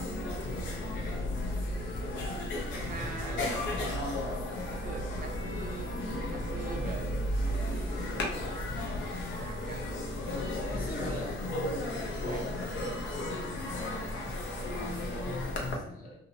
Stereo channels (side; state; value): both; normal; correlation 0.56